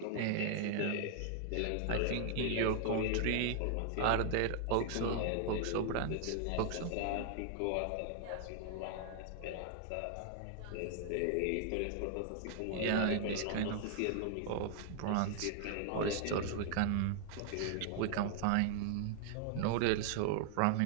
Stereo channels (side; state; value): both; different; correlation -0.01